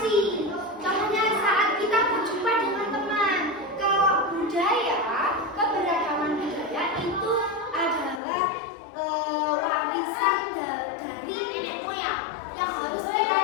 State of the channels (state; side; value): drops out; right; at 8.2 s